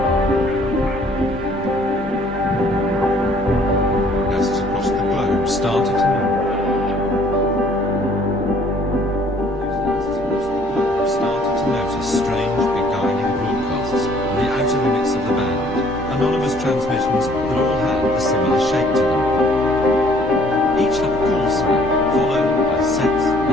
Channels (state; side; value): normal; both; correlation 0.59